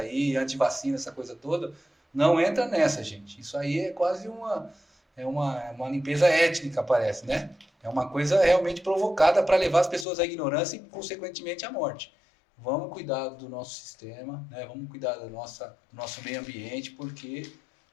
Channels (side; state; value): right; drops out; at 10.1 s